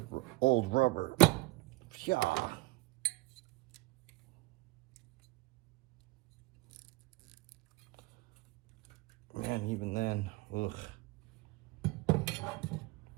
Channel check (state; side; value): quieter; left; 22.1 dB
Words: rubber. Yeah. Man, even then, ugh.